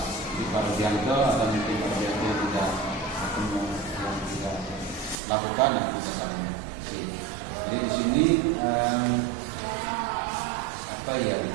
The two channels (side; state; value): left; drops out; at 5.2 s